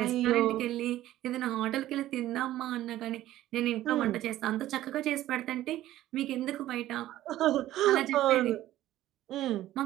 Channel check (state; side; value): quieter; left; 14.2 dB